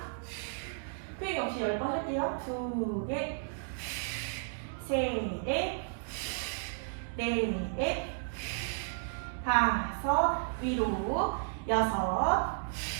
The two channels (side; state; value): left; silent; digital silence